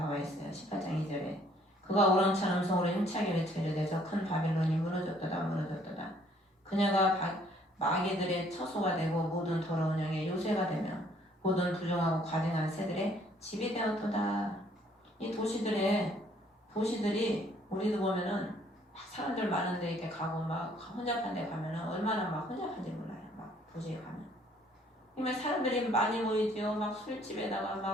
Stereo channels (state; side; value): normal; both; correlation 0.62